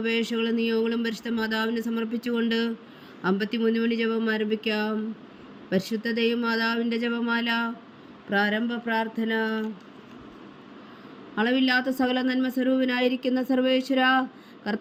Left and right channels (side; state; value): both; identical; correlation 1.00